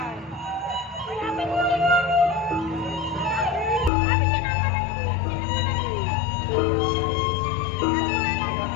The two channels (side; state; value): right; drops out; at 3.9 s